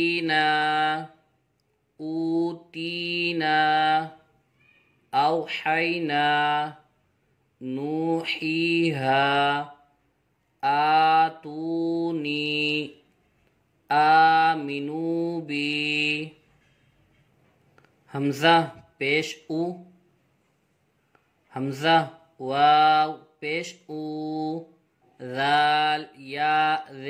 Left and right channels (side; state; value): both; identical; correlation 1.00